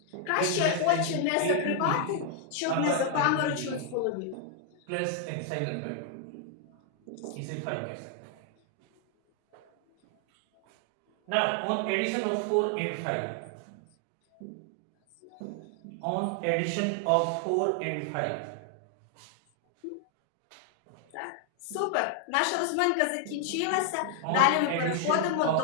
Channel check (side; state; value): both; different; correlation 0.00